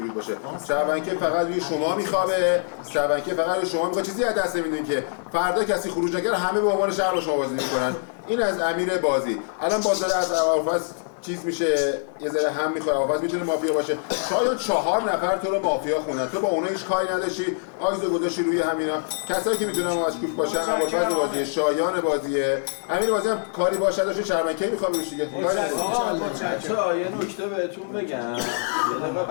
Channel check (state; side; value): silent; right; digital silence